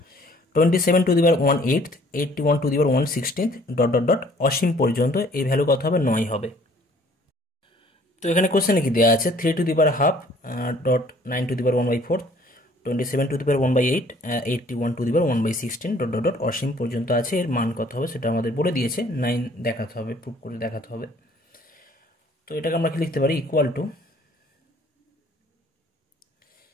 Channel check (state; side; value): normal; both; correlation 0.57